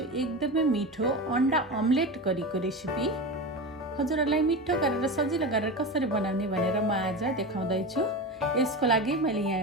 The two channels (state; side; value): normal; both; correlation 0.24